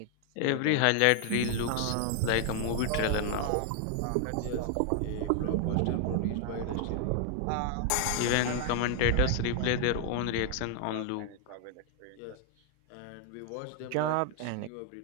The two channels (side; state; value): both; different; correlation 0.00